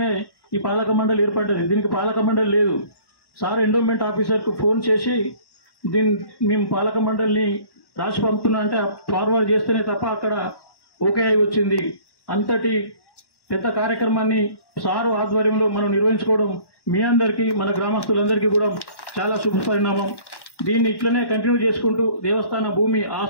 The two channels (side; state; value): right; late; 1.1 ms